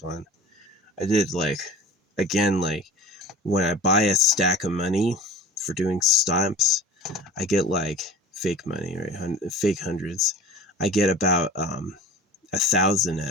I did, like, again, like, when I buy a stack of money for doing stamps, I get, like, fake money, right? Fake hundreds. I get about 1,000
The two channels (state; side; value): normal; both; correlation 0.40